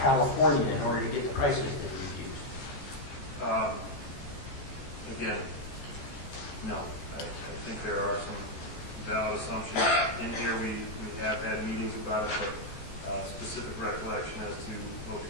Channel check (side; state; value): right; late; 14 ms